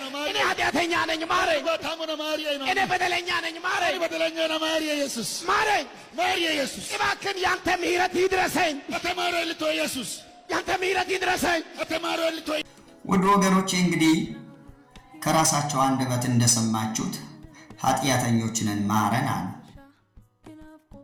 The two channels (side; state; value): both; identical; correlation 1.00